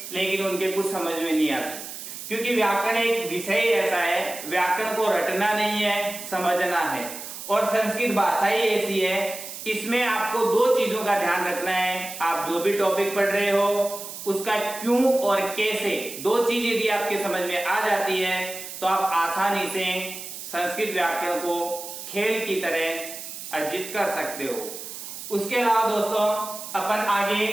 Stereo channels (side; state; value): right; noise; hiss, 10 dB below the sound